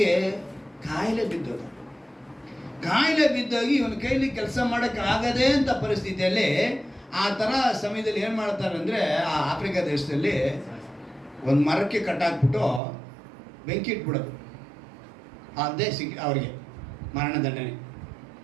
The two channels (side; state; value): left; drops out; at 12.8 s